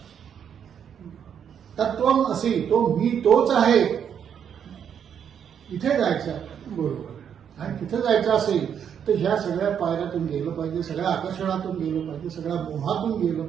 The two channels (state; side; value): quieter; left; 8.3 dB